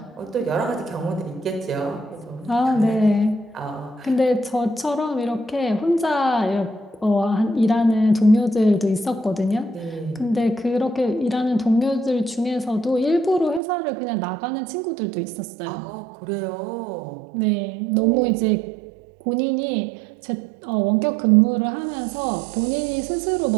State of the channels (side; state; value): left; drops out; at 13.6 s